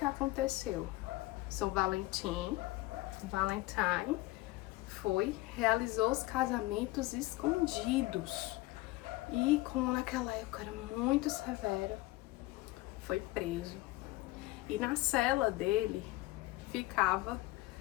aconteceu? São Valentine realizou os casamentos escondidos. E como naquela época era muito severa, foi preso. E na cela dele ficava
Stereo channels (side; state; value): right; quieter; 19.3 dB